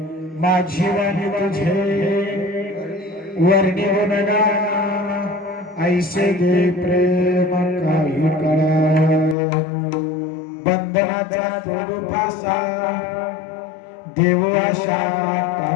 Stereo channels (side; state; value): right; drops out; at 9.3 s